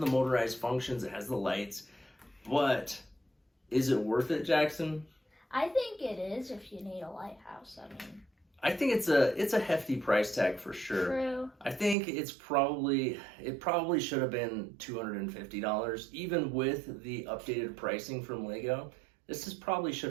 motorized functions, it has the lights, but is it worth it, Jackson? I think it is if you need a lighthouse. I mean, I think it's a hefty price tag for sure. True. I think it probably should have been $250, even with the updated pricing from Lego. This probably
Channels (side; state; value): left; drops out; at 12.0 s